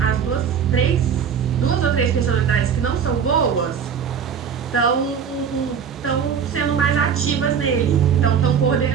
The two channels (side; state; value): left; quieter; 7.3 dB